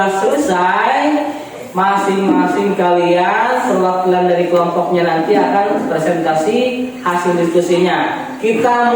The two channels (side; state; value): both; identical; correlation 1.00